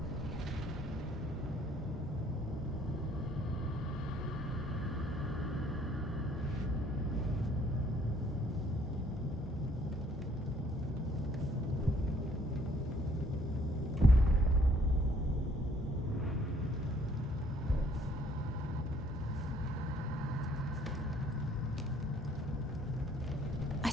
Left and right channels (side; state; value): both; normal; correlation 0.61